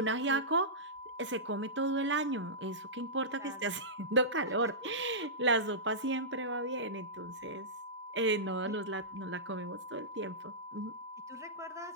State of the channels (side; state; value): both; normal; correlation -0.17